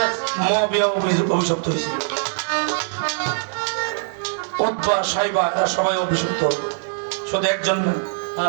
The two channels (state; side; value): silent; left; 61 dB below the other